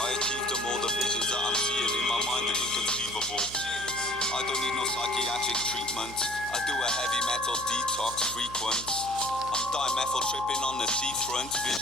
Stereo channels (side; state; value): right; noise; hum, 14 dB below the sound